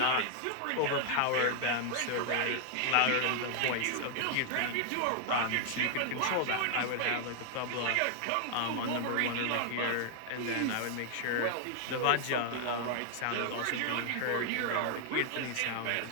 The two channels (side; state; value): both; different; correlation 0.00